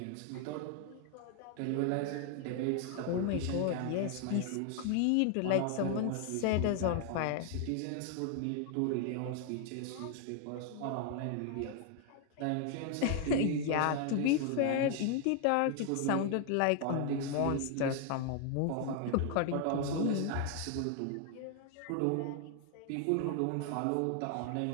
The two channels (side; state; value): both; different; correlation 0.00